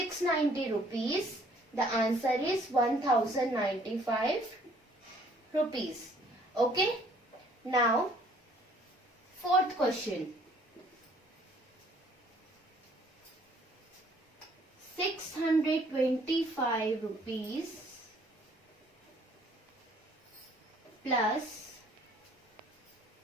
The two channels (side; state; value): both; normal; correlation 0.60